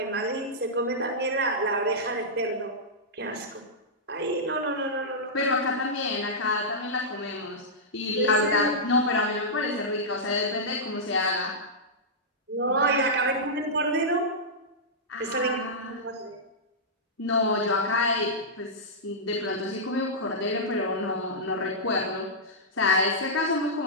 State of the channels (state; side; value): normal; both; correlation -0.12